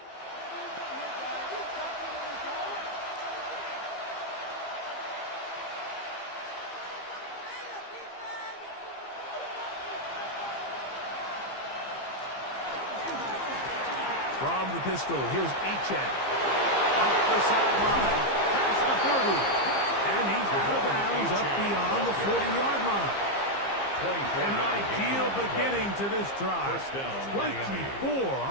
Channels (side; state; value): right; late; 15 ms